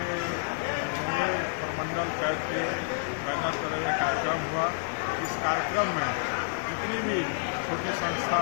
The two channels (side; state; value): right; silent; 58 dB below the other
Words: मुंगेर प्रमंडल कैट के बैनर पर यह कार्यक्रम हुआ। इस कार्यक्रम में जितनी भी छोटी